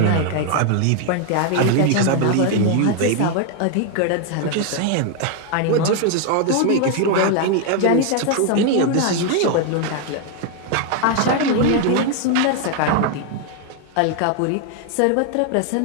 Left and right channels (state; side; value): different; both; correlation 0.01